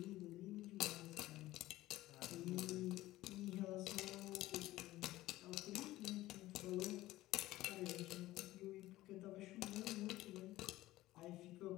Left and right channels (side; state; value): right; quieter; 16.6 dB